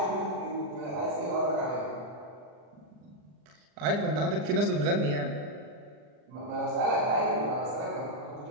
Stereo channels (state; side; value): late; left; 40 ms